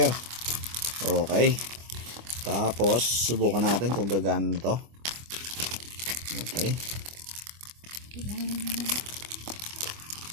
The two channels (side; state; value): left; late; 25 ms